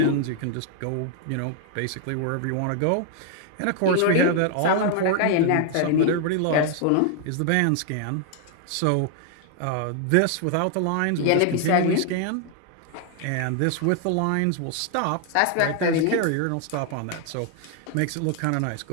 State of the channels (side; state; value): both; different; correlation 0.00